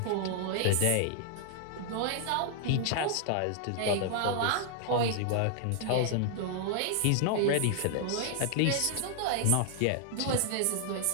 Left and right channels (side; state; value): both; different; correlation 0.00